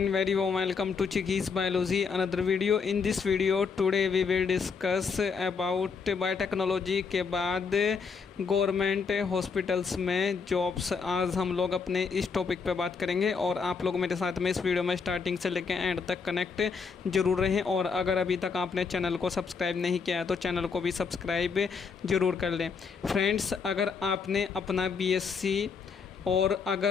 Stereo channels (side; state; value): right; quieter; 5.4 dB